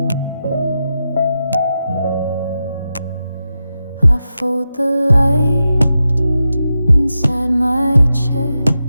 I fold the light inside my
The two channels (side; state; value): both; inverted; correlation -0.89